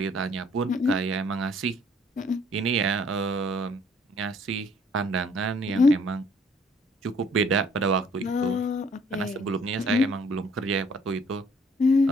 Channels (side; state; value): both; normal; correlation 0.61